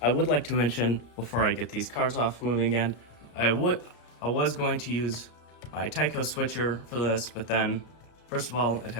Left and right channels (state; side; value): late; right; 33 ms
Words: I would like to mention before I get these cars off moving again, I was going to use my Tyco switcher for this, but then first of all, it